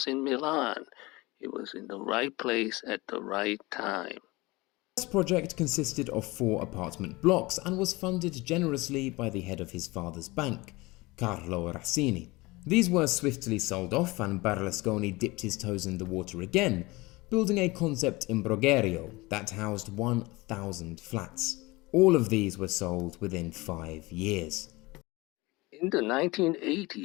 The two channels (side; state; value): right; quieter; 22.5 dB